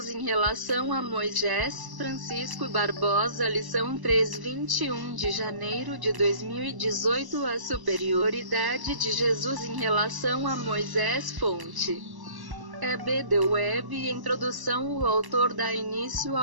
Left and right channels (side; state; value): left; late; 1.1 ms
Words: em relação a Moisés. Francisco Barbosa. Lição 3, 21 de janeiro de 2018. A superioridade de Jesus em relação a Moisés. Fonte: E.B. The Web. Introdução. O autor dá início